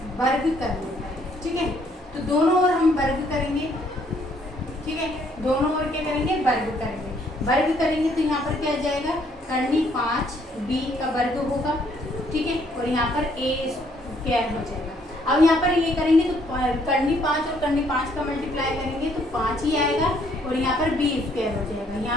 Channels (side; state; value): both; normal; correlation 0.67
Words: वर्ग करने का। ठीक है, तो दोनों ओर हम वर्ग करेंगे। ठीक है, दोनों ओर क्या करेंगे, वर्ग करेंगे। वर्ग करेंगे तो यहाँ पर क्या आ जाएगा, कर्णी 5 B का वर्ग होगा। ठीक है, और यहाँ पर A स्क्वायर हो जाएगा। अब यहाँ पर ये करेंगे तो कर्णी 5 और कर्णी 5 का मल्टीप्लाई करेंगे तो 5 ही आएगा, और यहाँ पर B स्क्वायर हो जाएगा।